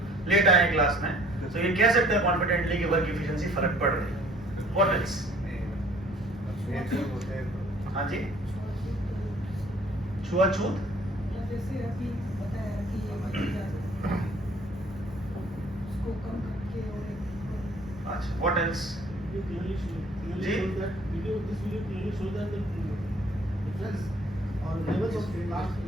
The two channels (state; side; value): normal; both; correlation 0.57